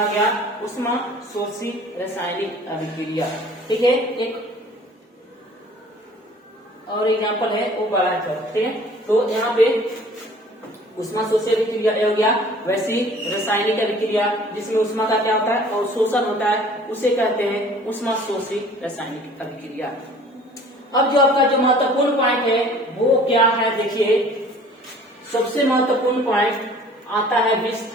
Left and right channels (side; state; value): both; normal; correlation 0.50